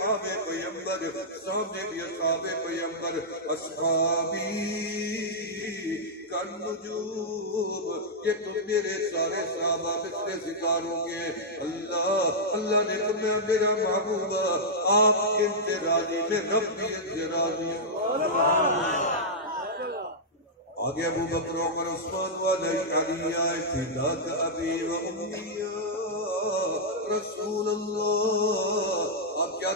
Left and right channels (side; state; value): both; normal; correlation -0.08